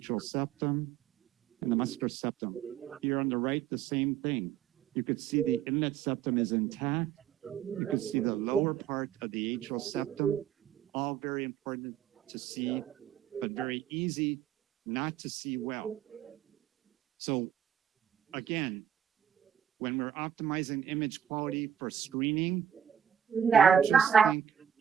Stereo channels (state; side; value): quieter; left; 9.1 dB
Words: septum and the muscular septum. Here on the right, the same thing. You could see the inlet septum is intact. You could see the lower part of the atrial septum, all very important to see, but very easy not to see well. So again, when we're optimizing image quality for screening, don't just think,